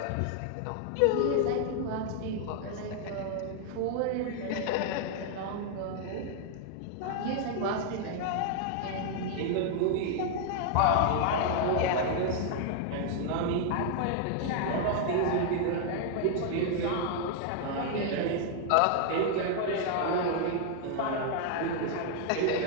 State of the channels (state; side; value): different; both; correlation 0.00